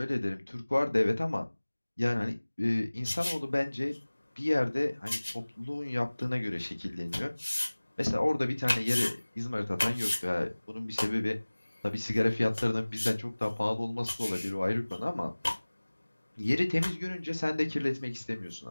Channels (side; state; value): both; inverted; correlation -1.00